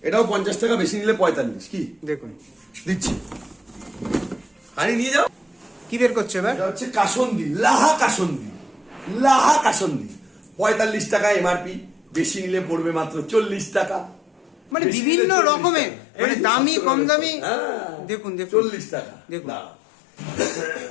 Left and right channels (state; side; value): drops out; right; at 14.8 s